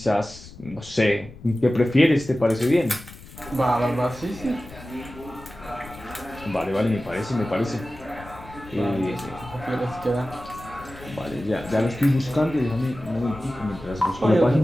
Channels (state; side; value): noise; left; rumble, 18 dB below the sound